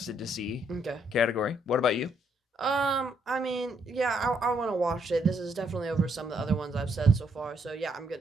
to see Okay. category. What about you? I mean, yeah, I want to watch it. This is definitely over some of the other ones I've said so far. So yeah, I'm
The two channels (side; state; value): both; normal; correlation 0.73